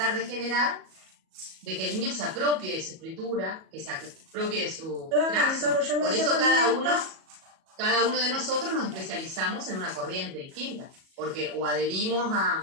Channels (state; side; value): late; left; 37 ms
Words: de generar de que el niño se apropie de su escritura, que se apropie de su trazo. Por eso cada uno de nosotros nos especializamos en una corriente distinta, porque o adherimos